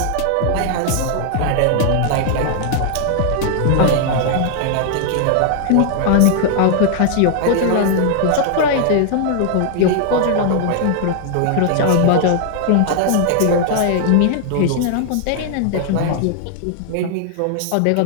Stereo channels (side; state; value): both; different; correlation 0.00